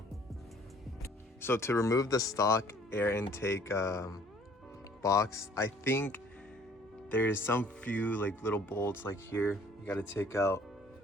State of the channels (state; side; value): normal; both; correlation 0.56